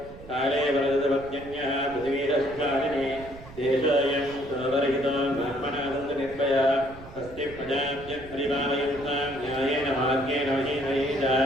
काले वरदवत्यन्यः पृथिवीरस्वामिने देशोऽयं सर्वरहितो ब्राह्मणाः सन्तु निर्भया तस्ति प्रजाभ्यः परिपालयन्तां न्यायेन मार्गेण महीमहेन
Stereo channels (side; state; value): right; noise; rumble, 17 dB below the sound